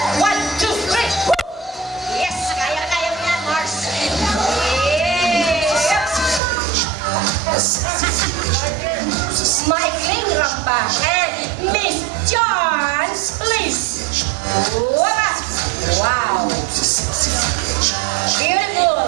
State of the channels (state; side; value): drops out; left; at 6.4 s